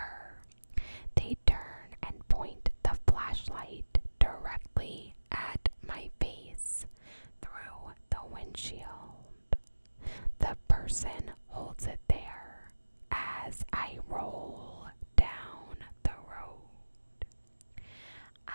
they turn and point the flashlight directly at my face through the windshield. The person holds it there as I roll down the road.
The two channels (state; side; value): inverted; both; correlation -1.00